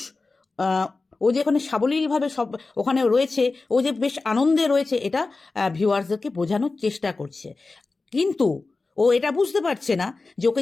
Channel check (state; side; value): quieter; right; 3.7 dB